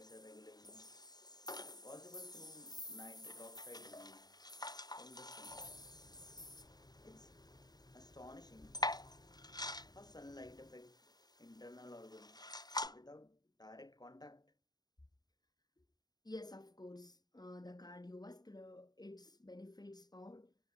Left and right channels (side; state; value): right; late; 0.19 ms